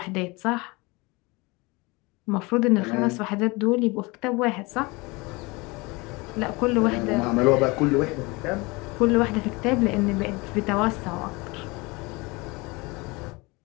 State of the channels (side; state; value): right; quieter; 25.1 dB